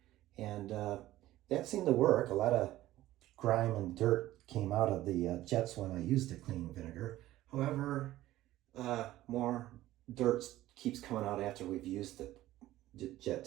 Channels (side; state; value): left; quieter; 15.3 dB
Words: and that seemed to work. A lot of grime and dirt came out of the jets when I used the cleaning vinegar. However, more dirt keeps coming out after we've used the jet